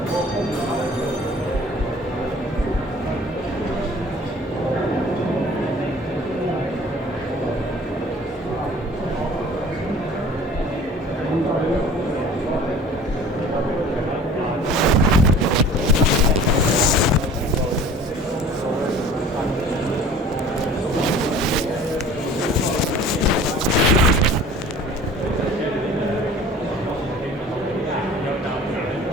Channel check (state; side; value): normal; both; correlation 0.46